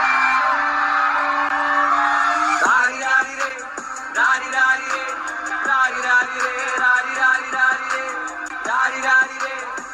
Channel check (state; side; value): identical; both; correlation 1.00